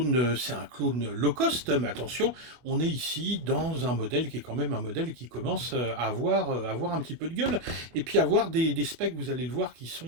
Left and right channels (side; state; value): left; late; 24 ms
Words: low cost, mais attention, on est ici dans un modèle qui est quand même un modèle qui commence à avoir un petit peu de gueule, et puis avoir des specs, vous allez le voir, qui